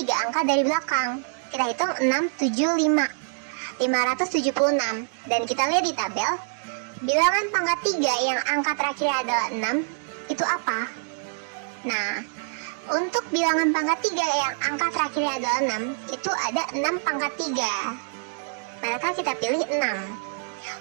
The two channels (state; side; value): silent; left; 61 dB below the other